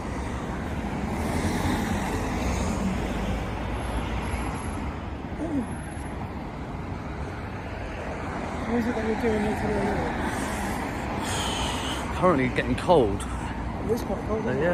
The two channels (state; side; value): identical; both; correlation 1.00